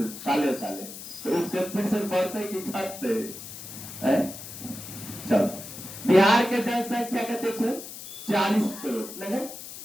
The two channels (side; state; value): left; noise; hiss, 12 dB below the sound